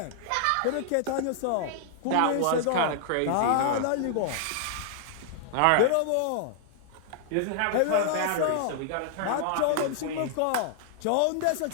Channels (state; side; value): different; both; correlation -0.01